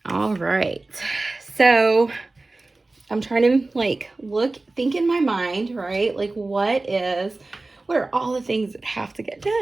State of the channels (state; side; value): quieter; left; 3.2 dB